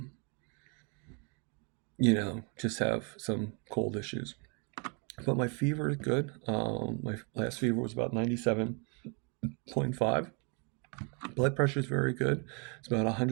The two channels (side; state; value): left; quieter; 34.4 dB